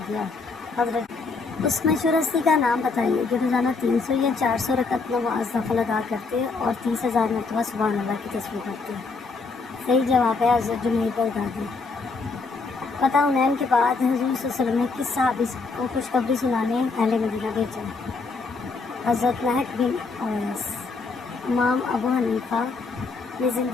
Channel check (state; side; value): quieter; right; 4.2 dB